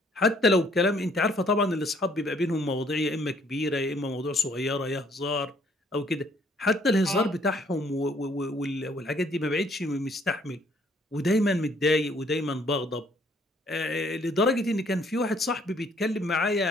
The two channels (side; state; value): both; normal; correlation 0.63